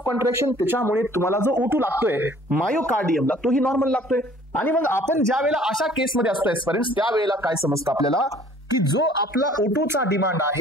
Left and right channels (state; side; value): normal; both; correlation 0.54